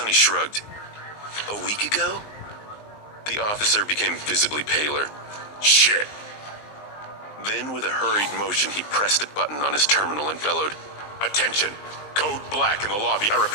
shrugged. A week ago? The officer became visibly paler. Shit. Then, with a hurried motion, he pressed a button on his terminal and bellowed, Attention! Code black in the lobby. I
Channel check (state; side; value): late; right; 20 ms